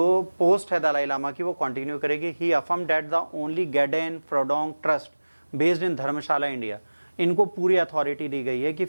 पोस्ट है दलाई लामा की वो कंटिन्यू करेगी। He affirm that the only Gaden Phodrang trust based in Dharamshala India, इनको पूरी अथॉरिटी दी गई है कि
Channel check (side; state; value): both; inverted; correlation -1.00